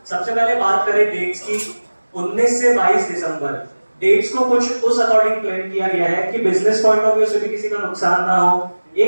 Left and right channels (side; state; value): both; inverted; correlation -1.00